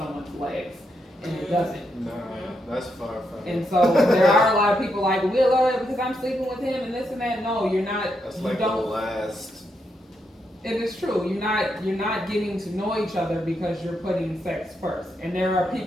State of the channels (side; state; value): both; normal; correlation 0.81